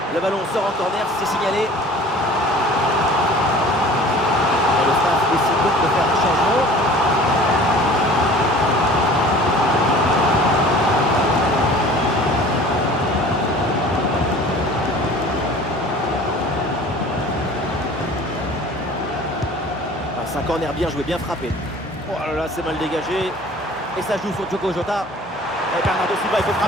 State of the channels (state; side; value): normal; both; correlation 0.46